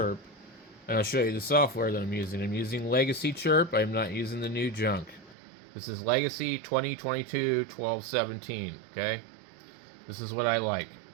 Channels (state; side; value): drops out; left; at 5.4 s